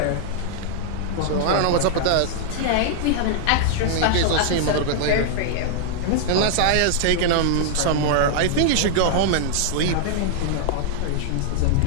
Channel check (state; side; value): different; both; correlation -0.01